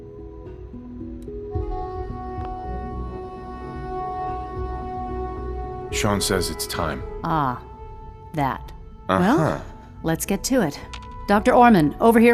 Sean says it's time. Ah, that. Well, let's get to it. Dr. Orman, over here,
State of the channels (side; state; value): both; identical; correlation 1.00